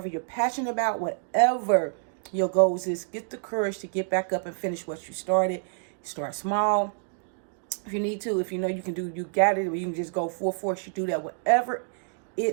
you're passionate about, whatever your goals is, get the courage to get back up and finish what you started. Start small. If you need to, if you know you can do, you got it, or you can just go full force, you do that. Whatever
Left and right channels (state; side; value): silent; left; digital silence